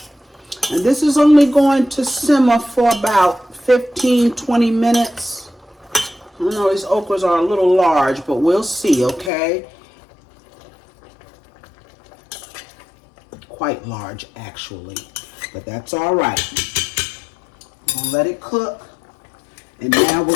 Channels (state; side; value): drops out; right; at 9.3 s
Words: And this is only going to simmer for about 15-20 minutes. I know these okras are a little large, but we'll see, okay? Quite large, actually, but that's all right. I'm gonna let it cook, and now we're